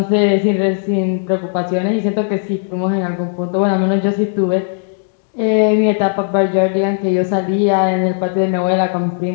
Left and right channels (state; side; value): silent; right; digital silence